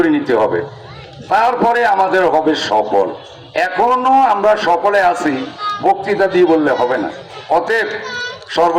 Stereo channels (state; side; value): identical; both; correlation 1.00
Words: নিতে হবে, তারপরে আমাদের হবে সফল। এখনো আমরা সকলে আছি, বক্তৃতা দিয়ে বললে হবে না। অতএব